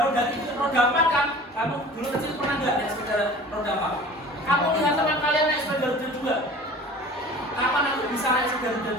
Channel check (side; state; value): both; normal; correlation 0.42